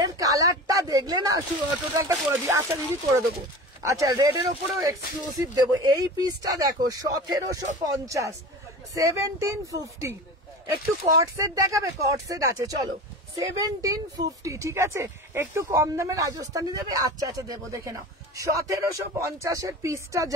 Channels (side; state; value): both; normal; correlation 0.34